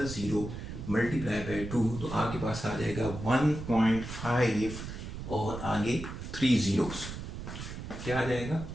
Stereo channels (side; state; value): right; noise; rumble, 8 dB below the sound